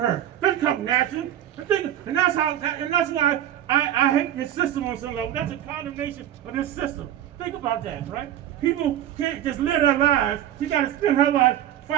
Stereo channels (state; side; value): quieter; left; 11.6 dB